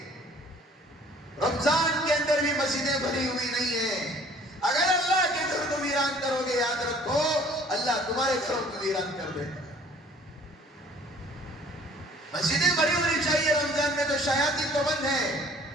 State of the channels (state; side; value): normal; both; correlation 0.54